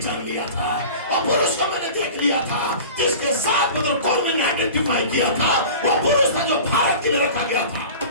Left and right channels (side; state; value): both; inverted; correlation -0.38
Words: लिया था और पुरुष को मैंने देख लिया था जिसके साथ मतलब कौन मैंने आइडेंटिफाई किया था। वो पुरुष था जो भारत के लिए रखा गया था